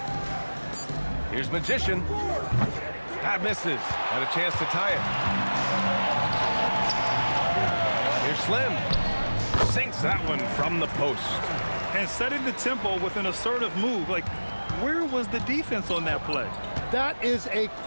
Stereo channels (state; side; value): inverted; both; correlation -1.00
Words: Here's Magician. That misses. And a chance to tie it. Here's Slim. Sinks that one from the post. And setting the tempo with an assertive move. Like, where was the defense on that play? That is a